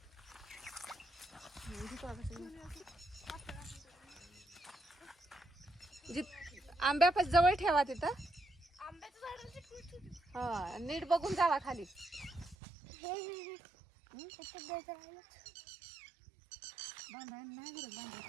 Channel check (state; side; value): drops out; left; at 12.6 s